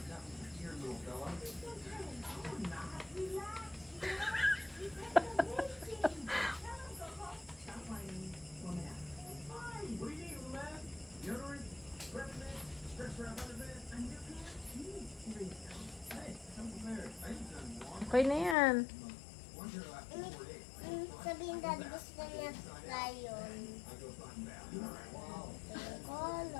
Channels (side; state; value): right; drops out; at 18.6 s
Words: Okay na yan. Sabihin daddy gusto niya lion.